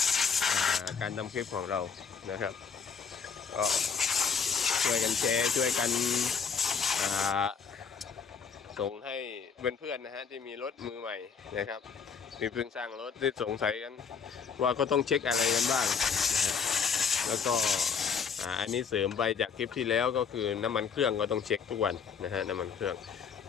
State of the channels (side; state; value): right; quieter; 6.2 dB